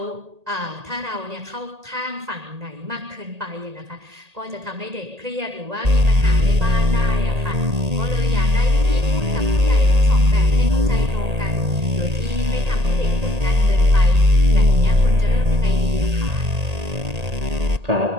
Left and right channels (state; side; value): late; left; 1.8 ms